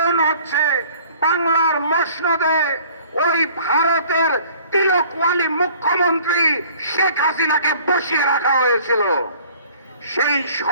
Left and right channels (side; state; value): both; inverted; correlation -0.52